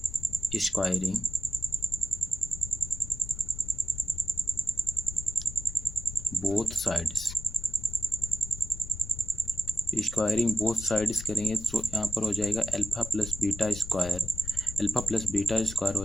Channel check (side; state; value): left; noise; rumble, 10 dB below the sound